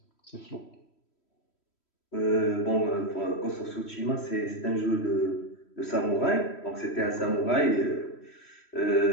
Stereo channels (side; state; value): right; late; 3.1 ms